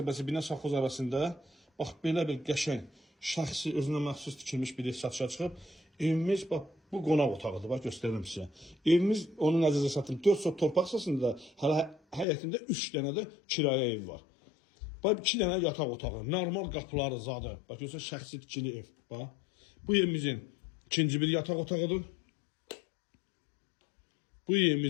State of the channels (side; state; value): right; drops out; at 12.2 s